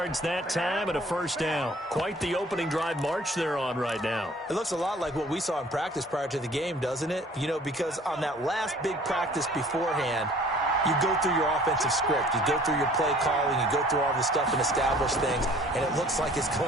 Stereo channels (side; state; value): both; normal; correlation 0.52